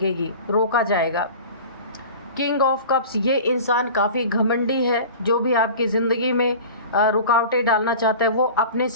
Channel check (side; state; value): both; inverted; correlation -0.38